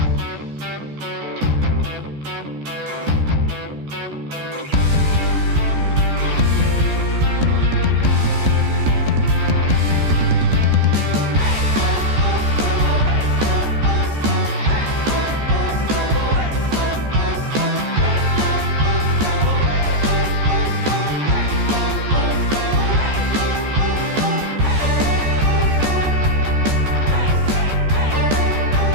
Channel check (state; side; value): late; left; 14 ms